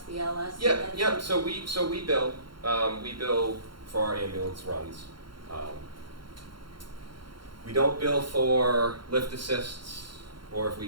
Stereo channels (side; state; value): left; late; 0.73 ms